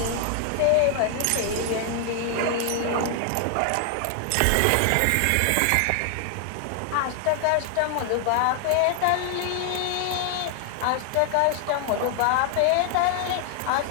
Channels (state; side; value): different; both; correlation 0.00